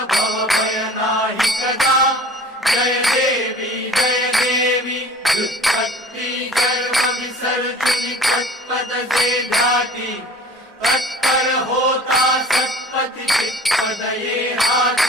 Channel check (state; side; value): normal; both; correlation 0.45